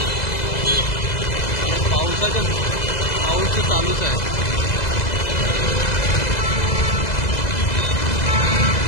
पाऊस चालूच आहे.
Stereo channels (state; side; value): late; right; 2.0 ms